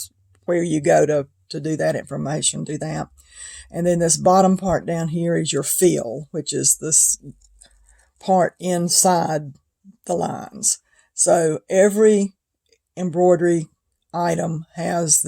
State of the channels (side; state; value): both; identical; correlation 1.00